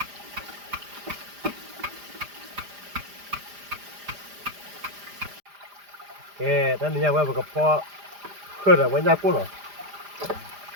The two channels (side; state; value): left; late; 5.0 ms